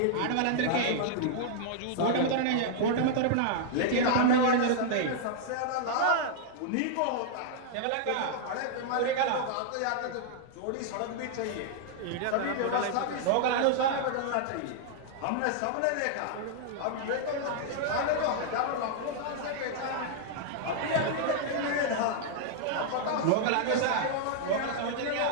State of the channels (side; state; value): both; different; correlation -0.01